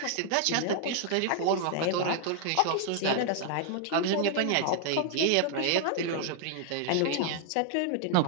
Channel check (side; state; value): both; different; correlation 0.00